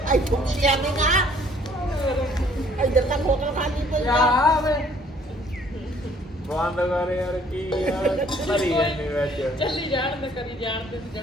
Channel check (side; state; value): both; normal; correlation 0.60